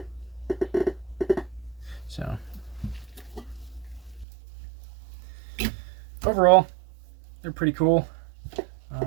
So, overall, they're pretty cool.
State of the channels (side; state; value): left; drops out; at 4.2 s